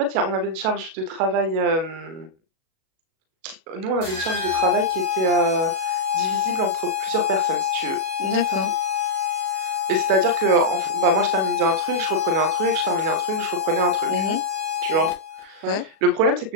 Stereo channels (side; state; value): left; late; 37 ms